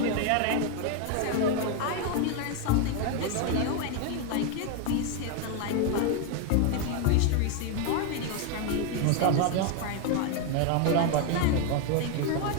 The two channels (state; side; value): different; both; correlation 0.01